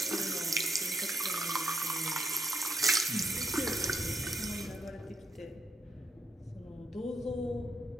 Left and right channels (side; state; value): both; normal; correlation 0.75